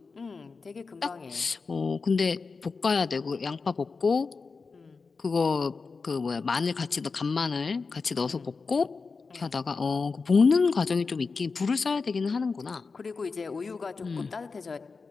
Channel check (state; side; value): quieter; right; 4.5 dB